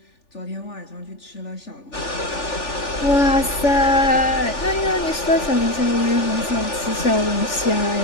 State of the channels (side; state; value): right; late; 3.4 ms